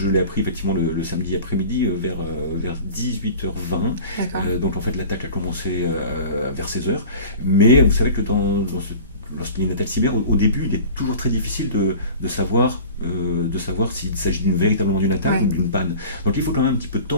l'ai appris effectivement le samedi après-midi vers 18h20. Donc en fait l'attaque a commencé vers 16h. Mais vous savez que lorsqu'il y a une attaque cyber, au début il est toujours très difficile de savoir s'il s'agit véritablement d'une attaque ou d'une panne. Donc il faut quand même un petit peu de temps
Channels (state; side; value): inverted; both; correlation -0.40